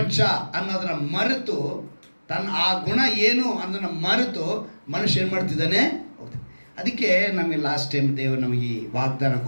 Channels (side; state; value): both; inverted; correlation -1.00